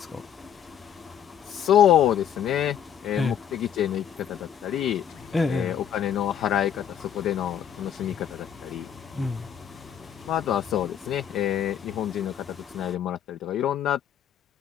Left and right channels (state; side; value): quieter; right; 9.2 dB